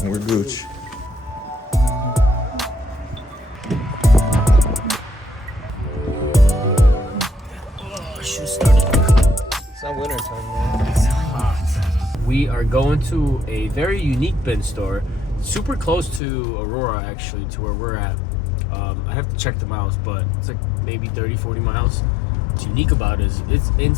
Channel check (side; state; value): right; drops out; at 16.2 s